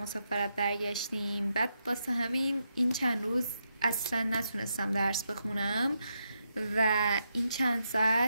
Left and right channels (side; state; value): both; inverted; correlation -0.83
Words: برگشتیم، بعد واسه همین این چند روز اصلا نتونستم درس بخونم و این چند